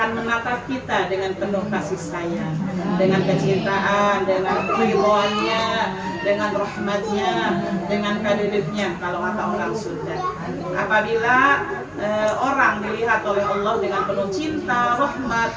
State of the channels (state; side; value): identical; both; correlation 1.00